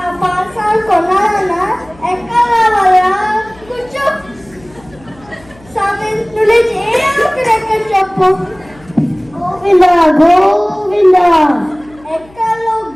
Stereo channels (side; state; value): left; noise; hum, 26 dB below the sound